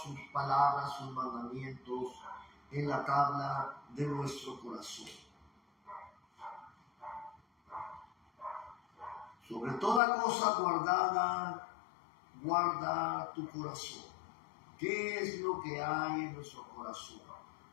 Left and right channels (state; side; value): drops out; right; at 10.0 s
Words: palabras, sus mandamientos en la tabla de nuestro corazón. Sobre toda cosa guardada, guarda tu corazón. ¿Qué es lo que hay en nuestro corazón?